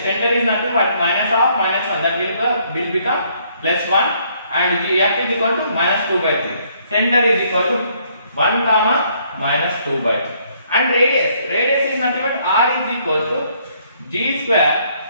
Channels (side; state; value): both; inverted; correlation -0.67